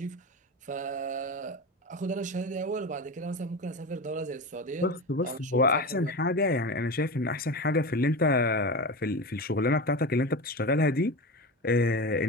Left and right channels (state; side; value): normal; both; correlation 0.25